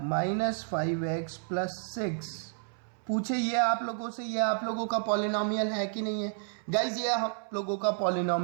5x plus 6। पूछे ये आप लोगों से, ये आप लोगों का पॉलिनॉमियल है कि नहीं है। गाइज ये आप लोगों का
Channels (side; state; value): left; silent; 57 dB below the other